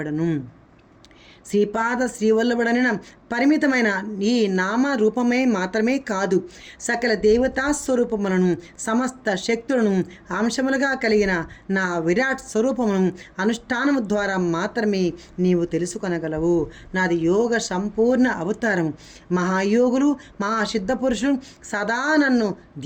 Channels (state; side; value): identical; both; correlation 1.00